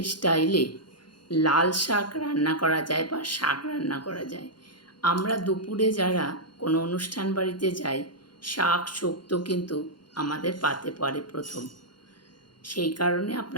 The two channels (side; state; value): right; late; 0.71 ms